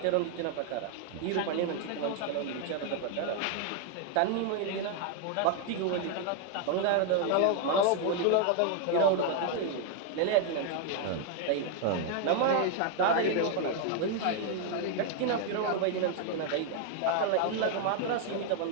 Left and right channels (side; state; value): both; different; correlation 0.00